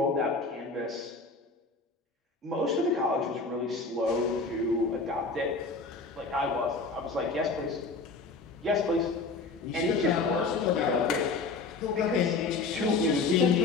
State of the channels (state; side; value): quieter; right; 3.9 dB